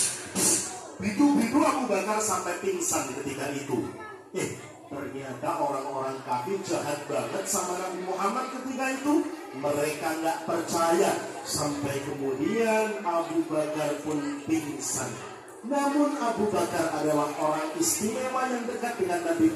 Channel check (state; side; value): identical; both; correlation 1.00